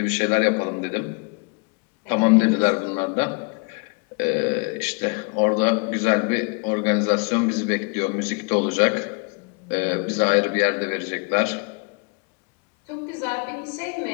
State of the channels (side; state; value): right; quieter; 33.3 dB